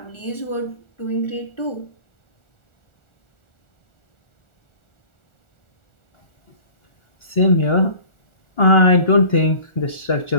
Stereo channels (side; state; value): right; late; 1.4 ms